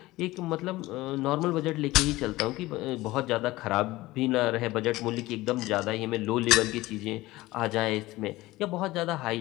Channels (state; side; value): quieter; right; 18.6 dB